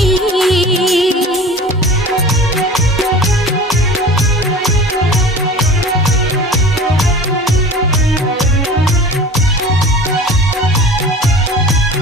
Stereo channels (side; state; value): both; normal; correlation 0.39